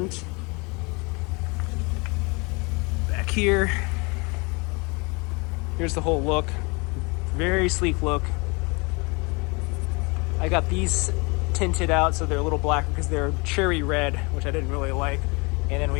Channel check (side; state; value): right; quieter; 28.8 dB